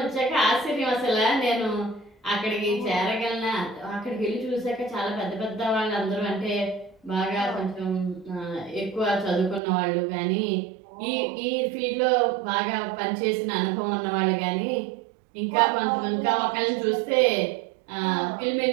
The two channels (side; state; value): left; drops out; at 9.6 s